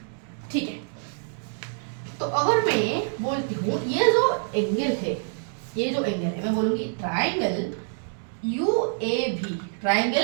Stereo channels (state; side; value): silent; left; digital silence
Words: ठीक है। तो अगर मैं बोलती हूँ ये जो एंगल है मैं बोलूंगी triangle UAV,